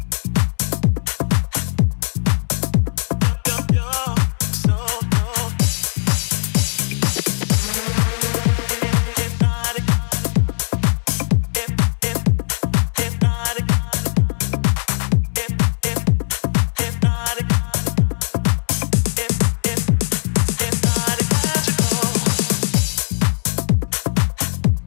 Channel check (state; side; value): silent; right; 60 dB below the other